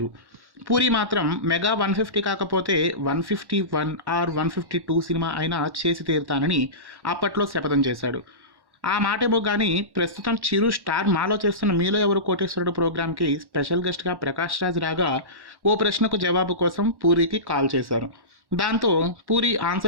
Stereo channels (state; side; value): late; left; 1.1 ms